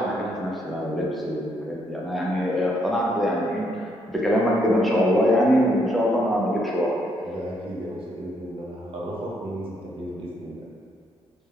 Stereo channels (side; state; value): both; normal; correlation 0.73